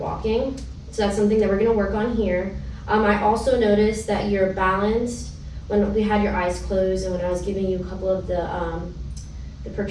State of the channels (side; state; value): both; identical; correlation 1.00